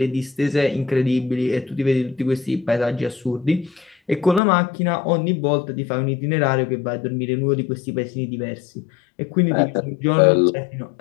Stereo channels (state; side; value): drops out; right; at 4.4 s